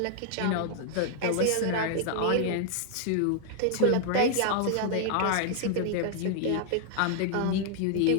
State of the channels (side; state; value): both; different; correlation 0.00